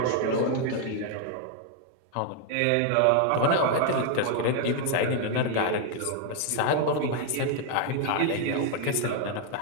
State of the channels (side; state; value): both; different; correlation 0.00